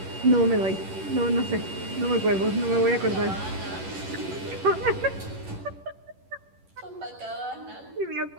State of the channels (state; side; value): late; left; 11 ms